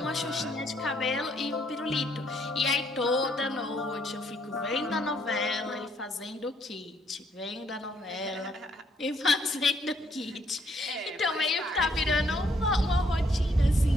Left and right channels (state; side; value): normal; both; correlation 0.69